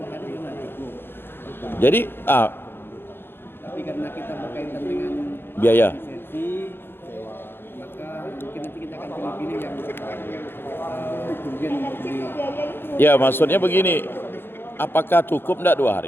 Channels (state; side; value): late; right; 0.10 ms